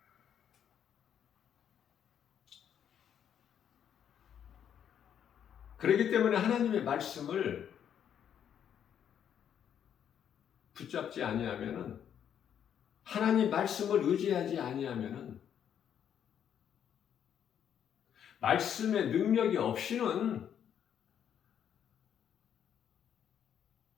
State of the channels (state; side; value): quieter; right; 9.0 dB